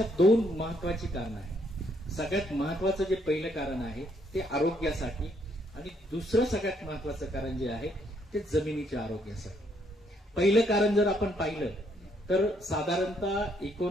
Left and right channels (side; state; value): both; normal; correlation 0.71